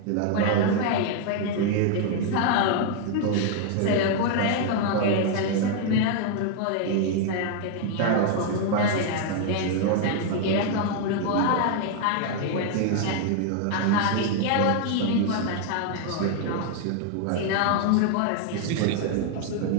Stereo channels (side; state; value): both; different; correlation 0.00